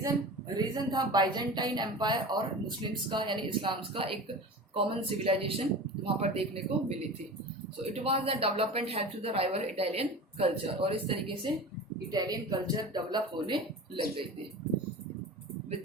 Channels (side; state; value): both; normal; correlation 0.33